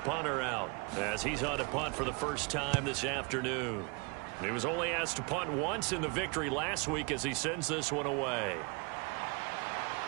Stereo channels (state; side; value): quieter; left; 30.7 dB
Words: out as he's on to punt for the first time this afternoon. He was only asked to punt once in the victory last week as he sends this one away.